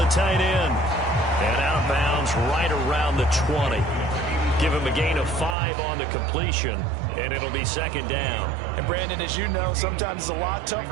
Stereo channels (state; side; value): drops out; left; at 5.6 s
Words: tight end. And out of bounds right around the 20. Give him a gain of 5 on the completion, and it'll be 2nd down. And, Brandon, as you know, sometimes it's a lot